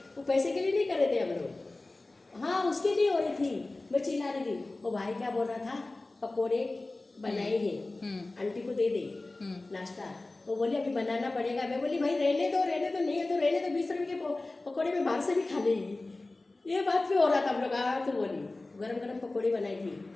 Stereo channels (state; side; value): quieter; right; 3.1 dB